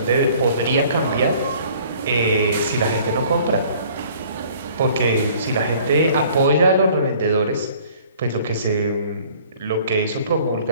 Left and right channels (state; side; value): inverted; both; correlation -0.54